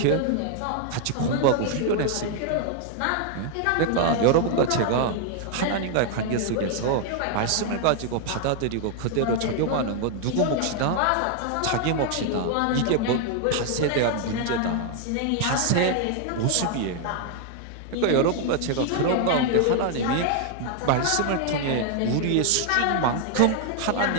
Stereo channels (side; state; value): both; different; correlation 0.00